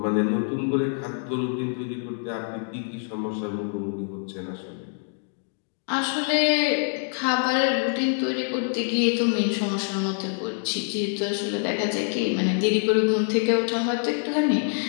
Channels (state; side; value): silent; right; 60 dB below the other